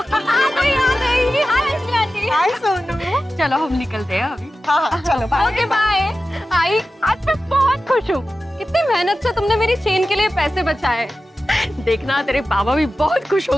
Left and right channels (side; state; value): both; normal; correlation 0.93